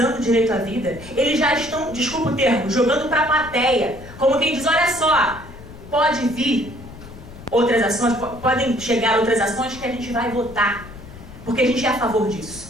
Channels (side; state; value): left; noise; rumble, 16 dB below the sound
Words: o direito à vida, eles já estão, desculpa o termo, jogando para a plateia, como quem diz, olha só, pode vir outras ações, podem chegar outras ações que a gente vai votar, porque a gente é a favor